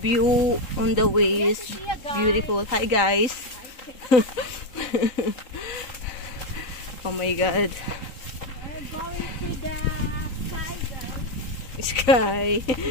on the way is beautiful. Hi, guys. Oh my God. We're going to the sky, guys. Sky.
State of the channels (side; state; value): right; late; 3.8 ms